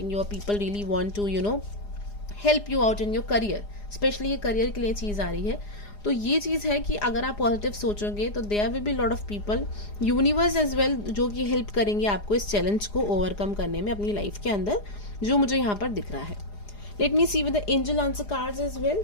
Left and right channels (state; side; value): late; right; 4.9 ms